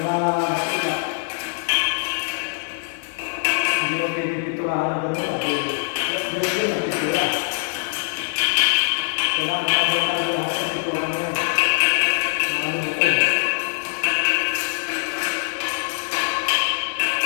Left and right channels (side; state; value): right; silent; 64 dB below the other